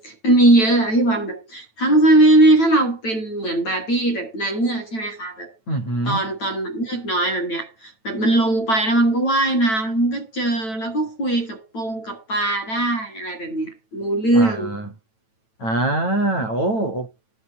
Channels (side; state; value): right; late; 9.1 ms